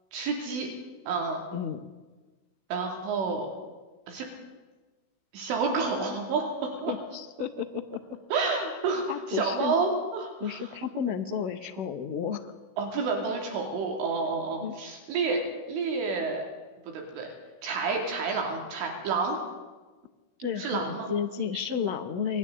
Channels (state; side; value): late; left; 16 ms